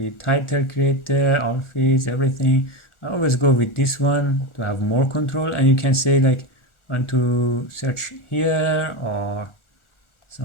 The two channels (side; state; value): right; late; 1.4 ms